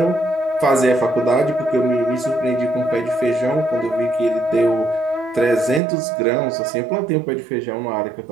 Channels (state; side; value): drops out; left; at 5.8 s